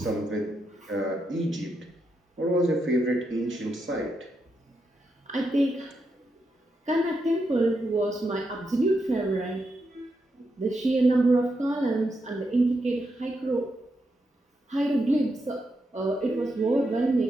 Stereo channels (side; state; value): both; normal; correlation 0.83